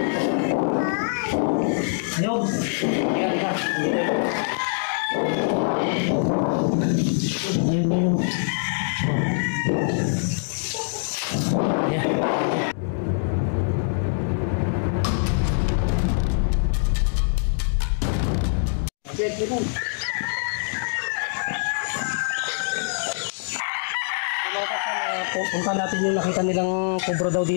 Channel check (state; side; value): silent; right; digital silence